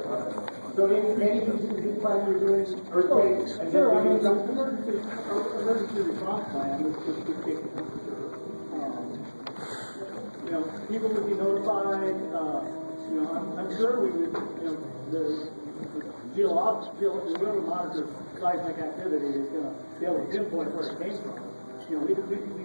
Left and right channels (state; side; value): inverted; both; correlation -1.00